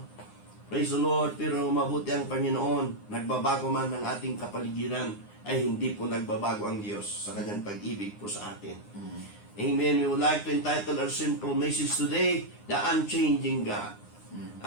Praise the Lord. Pero mabuti ang Panginoon. Nagbabago man ang ating kapaligiran, ay hindi po nagbabago ang Diyos sa kanyang pag-ibig po sa atin. Amen. We would like to entitle our simple message today, The Unchanging God.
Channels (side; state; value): right; late; 9.7 ms